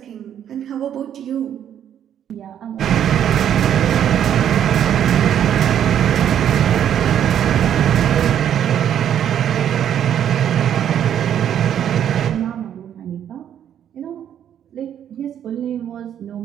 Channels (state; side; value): quieter; left; 9.8 dB